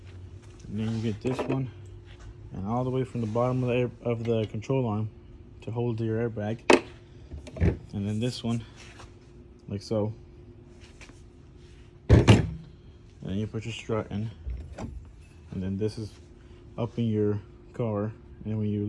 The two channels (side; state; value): both; identical; correlation 1.00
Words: and then you get this one, and all the way from the bottom of the control arm to hold your airbag, and then this one like so, and then you put your strut in, and then this is up in your car, and when